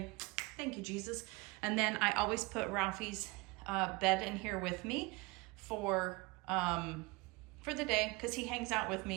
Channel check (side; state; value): left; quieter; 24.9 dB